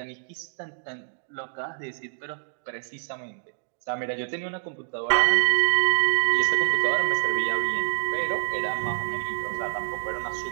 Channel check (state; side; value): silent; left; digital silence